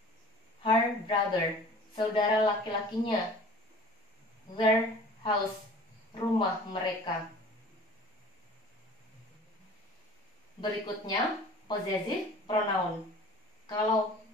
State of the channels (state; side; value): normal; both; correlation 0.45